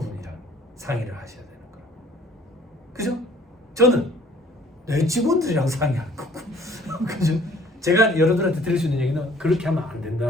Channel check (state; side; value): normal; both; correlation 0.55